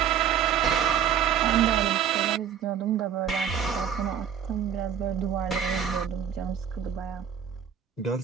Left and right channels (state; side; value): quieter; left; 8.5 dB